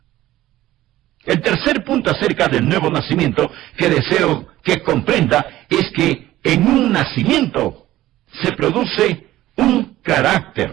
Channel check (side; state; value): left; quieter; 15.3 dB